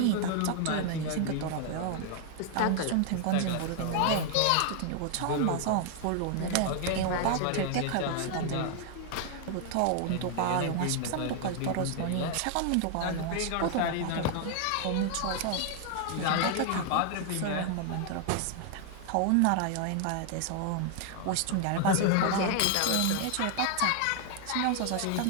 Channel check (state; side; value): different; both; correlation 0.00